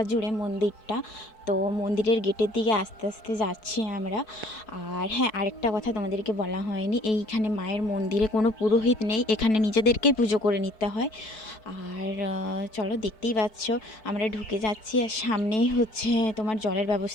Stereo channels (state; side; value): late; right; 4.6 ms